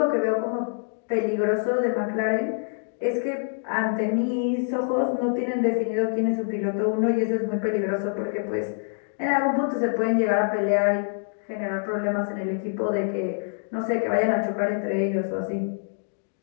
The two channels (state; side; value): silent; right; digital silence